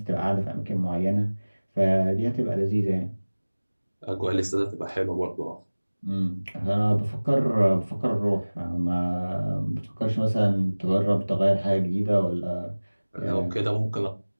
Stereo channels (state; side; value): inverted; both; correlation -1.00